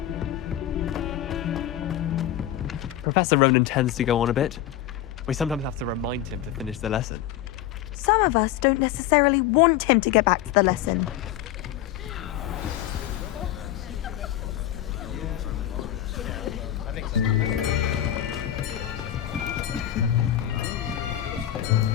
Professor Ronan tends to go on a bit. We sometimes have to remind him to finish the lesson. Some of us don't necessarily want him to get back to the lesson.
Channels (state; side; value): quieter; right; 12.4 dB